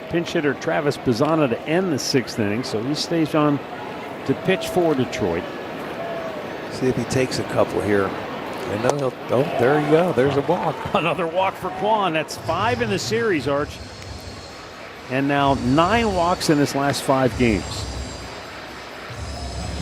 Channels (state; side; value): identical; both; correlation 1.00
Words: pinch hitter Travis Pizzana to end the 6th inning, so he stays on to pitch for Detroit. See if he takes a couple here. And oh, there you go. There's a walk. Another walk for Kwan. That's 5 in the series, Arch. And now 9 walks in his last 5 games.